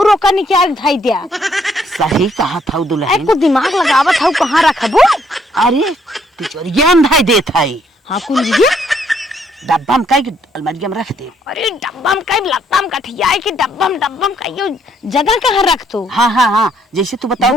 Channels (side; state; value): both; normal; correlation 0.69